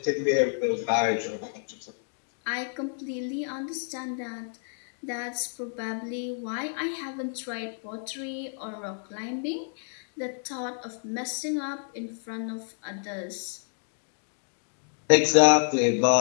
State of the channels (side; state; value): right; silent; digital silence